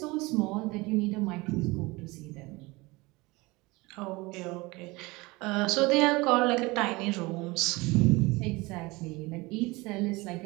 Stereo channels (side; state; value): left; quieter; 23.1 dB